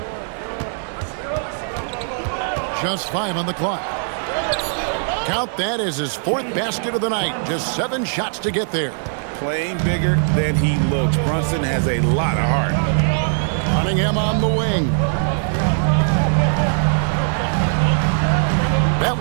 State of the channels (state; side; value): silent; left; digital silence